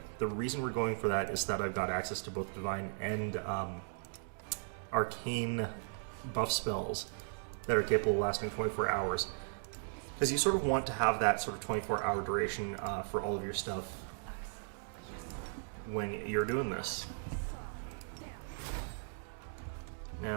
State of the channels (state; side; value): silent; left; digital silence